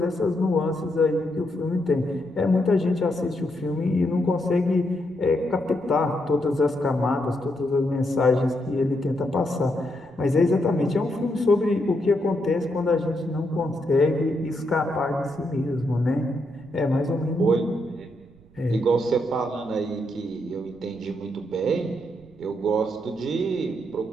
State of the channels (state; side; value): noise; right; rumble, 27 dB below the sound